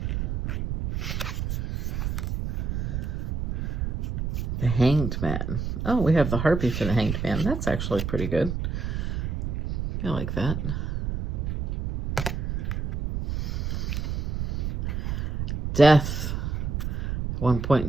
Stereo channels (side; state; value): right; noise; rumble, 2 dB below the sound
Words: The Hanged Man. Oh, we have the Harpy for the Hanged Man. That's actually pretty good. I like that. Death. At one point in